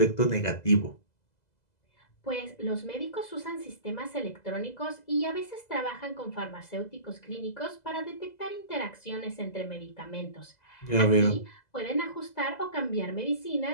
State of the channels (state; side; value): late; right; 2.0 ms